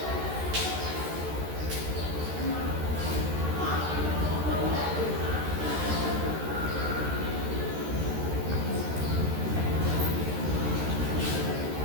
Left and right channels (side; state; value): left; late; 13 ms